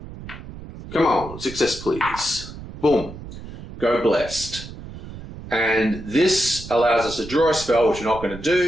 Come on, success please. Boom. Go blessed. And this allows us to draw a spell, which we're not going to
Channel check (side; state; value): right; noise; rumble, 13 dB below the sound